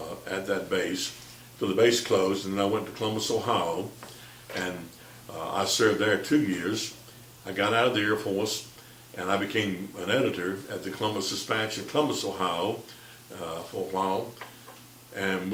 at that base till the base closed, and then I went to Columbus, Ohio, and I served there 2 years. I got out of the Air Force, and I became an editor at the Columbus Dispatch in Columbus, Ohio, for a while. And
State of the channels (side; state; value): both; identical; correlation 1.00